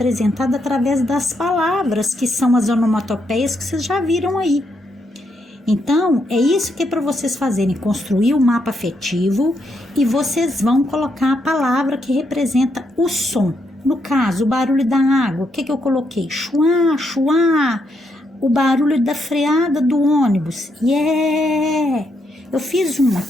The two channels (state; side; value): normal; both; correlation 0.78